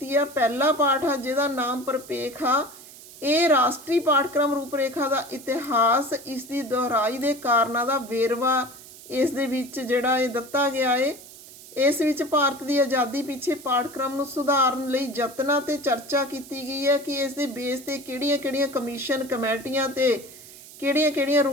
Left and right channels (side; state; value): right; noise; hiss, 18 dB below the sound